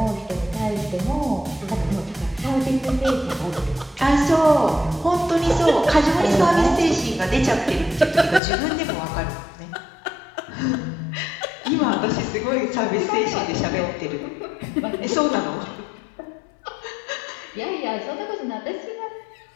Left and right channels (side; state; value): right; drops out; at 8.4 s